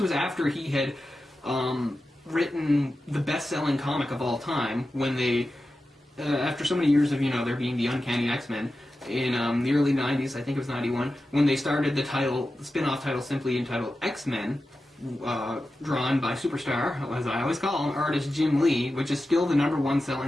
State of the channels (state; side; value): normal; both; correlation 0.93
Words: after he had written the best-selling comic of all time, when they, after so many years of, there being the Uncanny XMen, in the early 90s, I think it was 91, when they started the spin-off title simply entitled XMen, drawn by Superstar, as I always call him, artist Jim Lee, which is still the #1